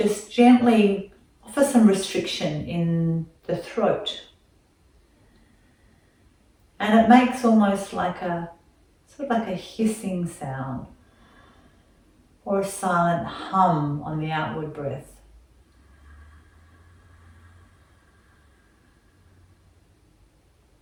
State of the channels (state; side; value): identical; both; correlation 1.00